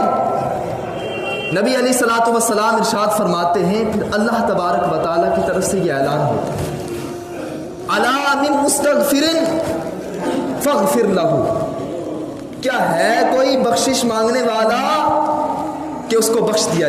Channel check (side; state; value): both; identical; correlation 1.00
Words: نبی علیہ الصلوۃ والسلام ارشاد فرماتے ہیں، پھر اللہ تبارک و تعالیٰ کی طرف سے یہ اعلان ہوتا ہے، الا من مستغفر فاغفر لہ، کیا ہے کوئی بخشش مانگنے والا کہ اس کو بخش دیا